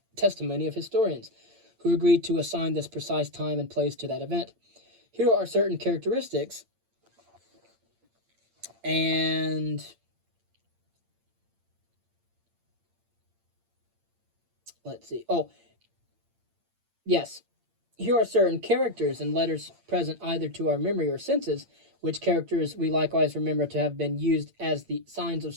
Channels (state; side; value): late; left; 8.8 ms